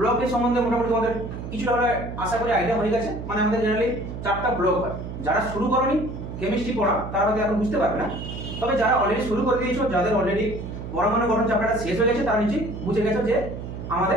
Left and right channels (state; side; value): noise; right; hum, 8 dB below the sound